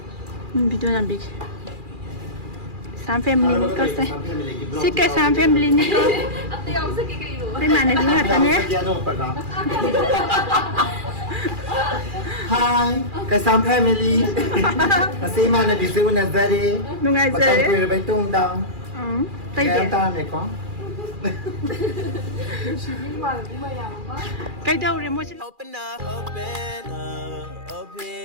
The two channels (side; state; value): left; late; 2.4 ms